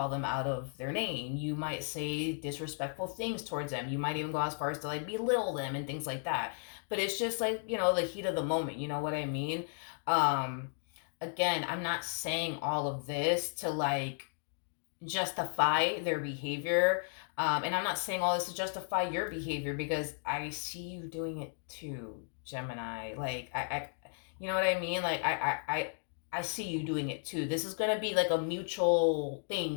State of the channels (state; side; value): silent; right; 55 dB below the other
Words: them out of their name. You might say disrespectful things towards them. You might even go as far as to like belittle them and things like that. But it's just like, the heat of the moment. You know what I mean? Again, I'm not saying all of this to like justify their behavior. And I'm not saying all this to justify your behavior because I see you doing it too, Gemini. Like, you know what I mean? Like, I see you doing it too. This is going to be like a mutual